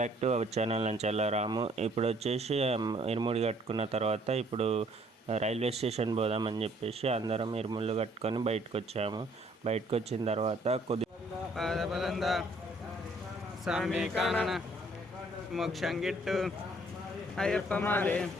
to our channel Nanchala Ramu. ఇప్పుడు వచ్చేసి ఇరుముడి కట్టుకున్న తర్వాత ఇప్పుడు రైల్వే స్టేషన్ పోదామని చెప్పేసి అందరం ఇరుముళ్ళు కట్టుకొని బయటకు వచ్చాము. బయటకు వచ్చిన తర్వాత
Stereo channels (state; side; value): normal; both; correlation 0.62